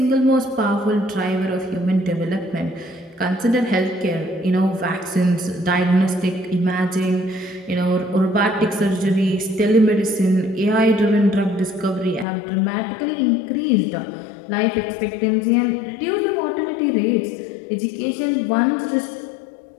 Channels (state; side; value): drops out; right; at 12.2 s